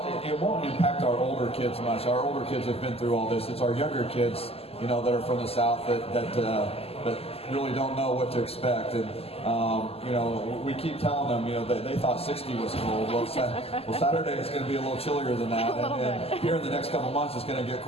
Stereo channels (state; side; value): late; right; 0.29 ms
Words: it won't impact our older kids much. Our older kids have been through all this. It's our younger kids, that are from the South that really don't know what to expect. And we keep telling them, they thought 60 was cold. Well, Saturday is going to be a little chillier than that, and here in the next couple months it's going to get